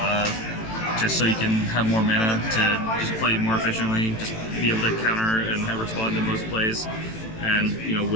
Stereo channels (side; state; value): right; late; 18 ms